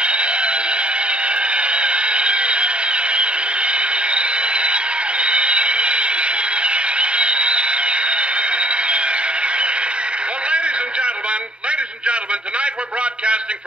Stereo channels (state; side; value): late; left; 0.054 ms